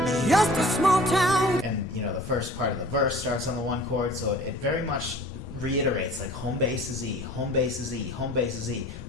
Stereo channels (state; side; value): normal; both; correlation 0.46